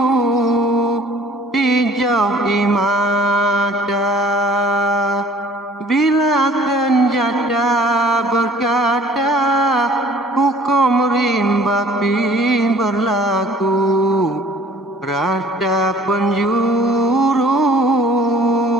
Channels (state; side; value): normal; both; correlation 0.53